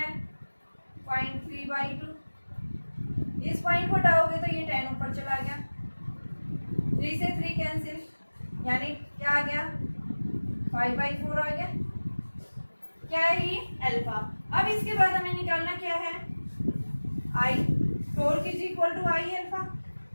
0.3/2। इस पॉइंट को हटाओगे तो ये 10 ऊपर चला गया, 3 से 3 कैंसिल यानी क्या आ गया 5/4 आ गया। क्या है ये अल्फा। अब इसके बाद हमें निकालना क्या है I, torque is equal to I alpha.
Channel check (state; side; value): inverted; both; correlation -1.00